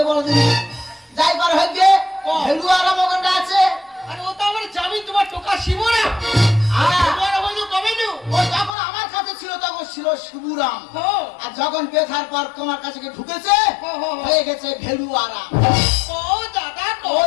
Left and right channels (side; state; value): right; drops out; at 8.8 s